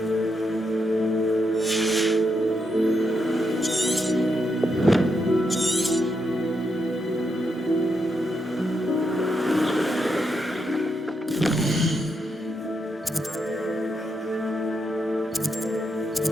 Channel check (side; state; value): both; normal; correlation 0.81